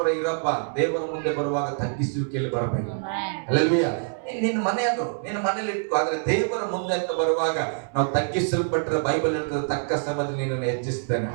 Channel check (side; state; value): left; silent; 61 dB below the other